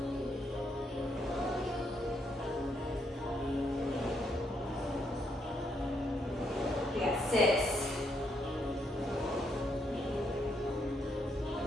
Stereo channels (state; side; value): normal; both; correlation 0.75